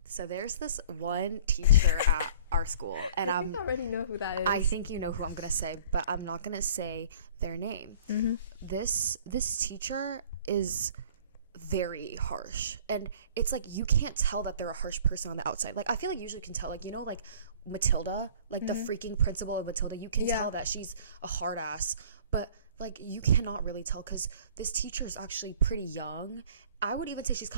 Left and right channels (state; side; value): inverted; both; correlation -0.49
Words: so there's this one teacher at our school and I think I already know who that is. I think you know who I'm gonna say, but I'm not gonna say their name. This teacher is very harsh, and it's like you can't tell that they're a harsh person on the outside. Like I feel like you usually can tell, like, you know, like Matilda, like the freaking principal of Matilda, you can tell that she's a hard ass, but like you cannot really tell because this teacher is actually pretty young. I would even say she's